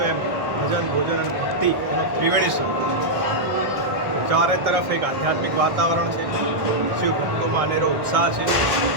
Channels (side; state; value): left; late; 1.4 ms